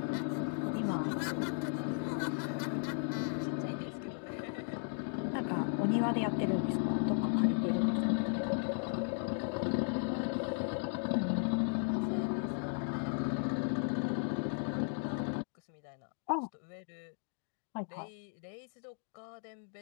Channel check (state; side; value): silent; right; 54 dB below the other